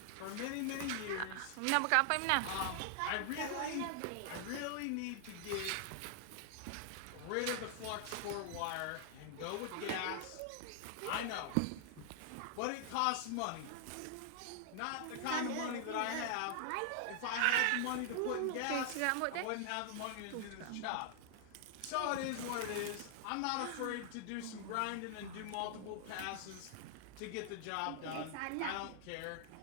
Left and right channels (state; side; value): different; both; correlation 0.00